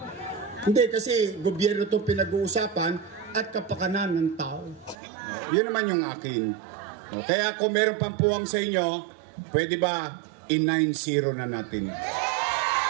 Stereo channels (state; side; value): drops out; left; at 5.0 s